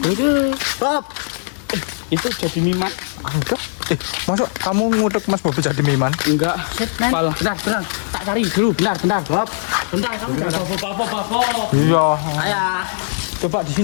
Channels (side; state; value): right; silent; digital silence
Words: Bob. itu jadi mimat. Enggak. Masuk kamu ngudek Mas Bobi jadi miman? Enggak. Shit, man. Pal. Bentar. Tak cari dulu. Bentar. Bob. Bentar, kamu jangan bapak. Iya. Ayah. Coba di